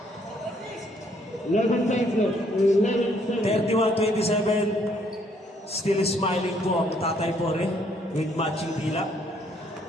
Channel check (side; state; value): both; normal; correlation 0.67